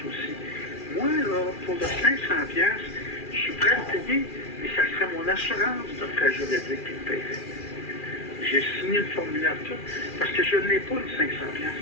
aussi. Moi, là, pour le 500 piastres, je suis prêt à le payer, mais ça serait mon assurance de frais juridiques qui le paierait. J'ai signé le formulaire tout, parce que je ne l'ai pas, le 500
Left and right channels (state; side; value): late; right; 2.4 ms